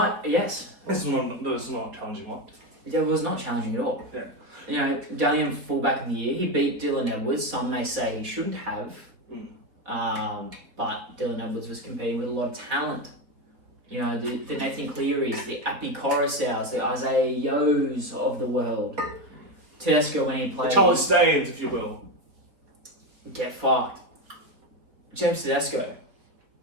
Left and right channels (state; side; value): late; left; 4.0 ms